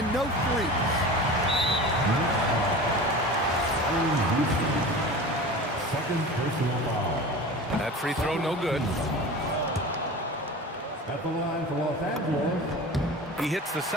no threes. Second personal foul. That free throw no good. At the line for Los Angeles. He hits the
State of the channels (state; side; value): normal; both; correlation 0.34